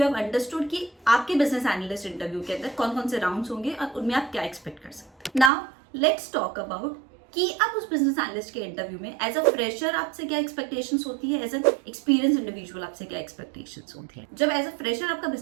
have understood कि आपके बिजनेस एनालिस्ट इंटरव्यू के अंदर कौन कौन से राउंड्स होंगे और उनमें आप क्या एक्सपेक्ट कर सकते हैं। नाउ लेट्स टॉक अबाउट कि आप उस बिजनेस एनालिस्ट के इंटरव्यू में एज अ फ्रेशर आपसे क्या एक्सपेक्टेशंस होती है, एज एन एक्सपीरियंस इंडिविजुअल आपसे क्या एक्सपेक्टेशंस होती है। जब एज अ फ्रेशर आपका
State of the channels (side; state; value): left; drops out; at 5.5 s